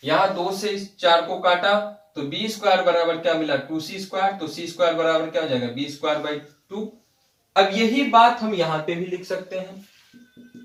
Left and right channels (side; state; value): both; identical; correlation 1.00